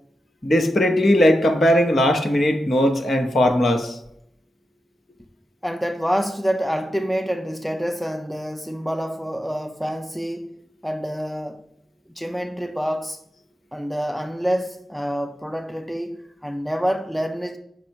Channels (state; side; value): normal; both; correlation 0.88